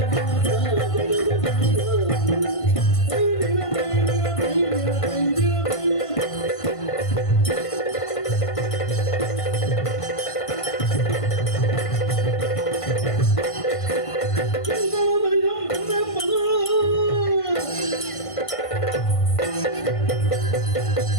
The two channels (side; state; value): right; late; 1.5 ms